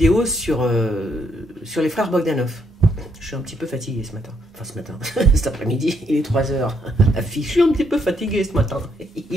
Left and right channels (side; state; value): both; normal; correlation 0.74